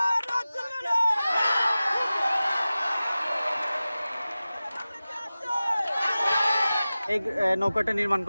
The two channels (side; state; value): both; inverted; correlation -0.96